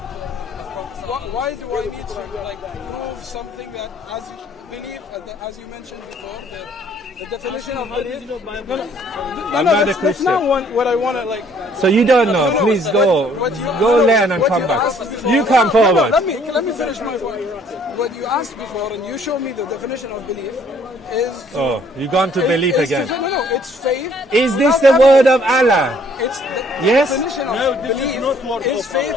Why do I need to prove something that, as you believe, as you mentioned before, that the definition of belief? I'm not a That's Christian. not what I want to So you don't know. Please go learn and come back. You come forward. Let me finish my point. What you asked before, and you showed me the definition of belief, is. Oh, you gone to belief is again. No, it's faith. Is this without the word evidence. of Allah? It's the Yes? definition of belief is faith.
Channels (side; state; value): both; normal; correlation 0.61